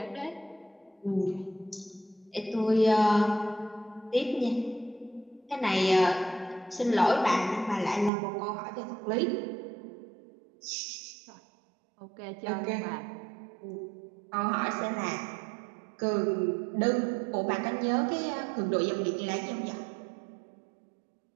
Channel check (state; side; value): drops out; left; at 8.1 s